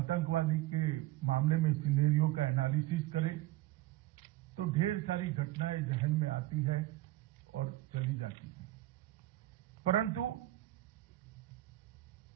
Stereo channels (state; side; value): quieter; left; 16.5 dB